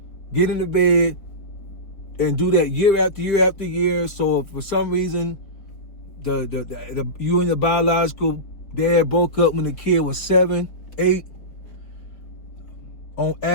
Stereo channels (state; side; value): late; right; 4.4 ms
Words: get in the bed, and do that year after year after year. So if for some reason you and your biological dad broke up when the kid was 7, 8, on